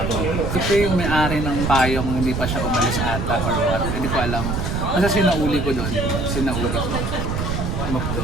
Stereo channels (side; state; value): right; noise; rumble, 2 dB below the sound